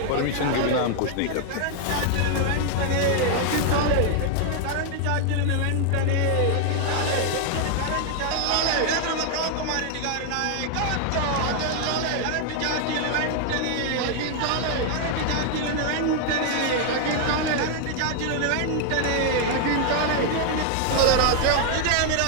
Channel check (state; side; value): different; both; correlation 0.00